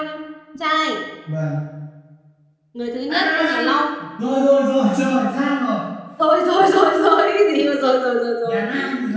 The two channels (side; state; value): both; identical; correlation 1.00